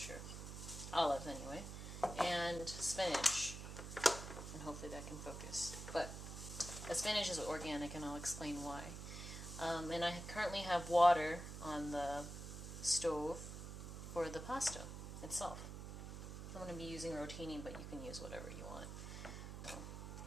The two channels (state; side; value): noise; right; hum, 8 dB below the sound